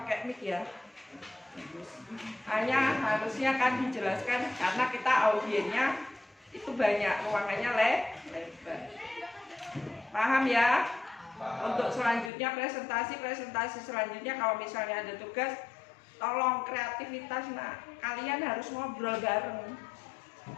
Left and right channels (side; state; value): right; drops out; at 12.3 s